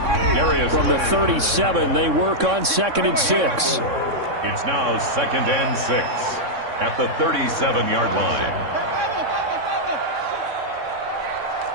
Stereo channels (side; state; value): left; late; 3.6 ms